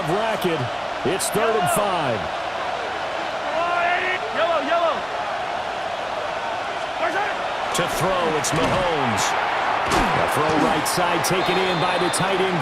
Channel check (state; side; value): identical; both; correlation 1.00